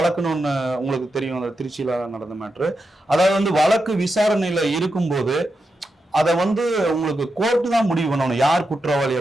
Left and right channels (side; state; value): both; normal; correlation 0.87